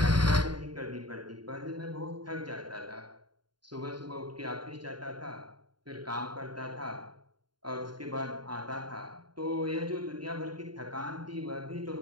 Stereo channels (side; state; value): left; late; 0.71 ms